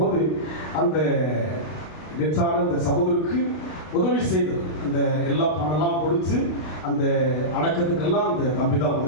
அந்த டெத்தான அந்த சகோதரிக்கு உதவி செய்தது. அந்த எல்லா பணம்லாம் கொடுத்து அந்த அடக்கத்துக்கெல்லாம் அந்த தம்பி தான்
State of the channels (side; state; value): right; late; 32 ms